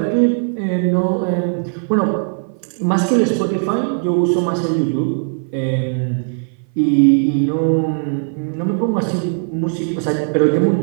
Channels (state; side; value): silent; left; 57 dB below the other